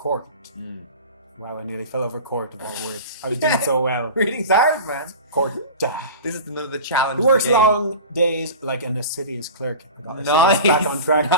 Mm. Wow, I nearly fell over court of all words. I was doing so well. Reading's hard, man. Court. This is another challenge. He works of the game. long days like an assiduous clerk. Nice. Back on track.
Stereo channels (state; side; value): inverted; both; correlation -0.34